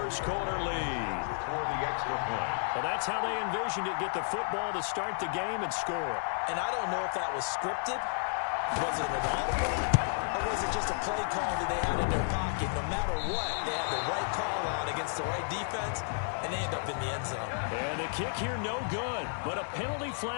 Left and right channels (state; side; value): silent; right; digital silence